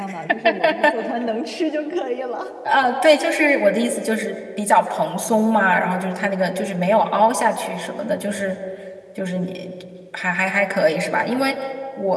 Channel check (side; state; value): both; identical; correlation 1.00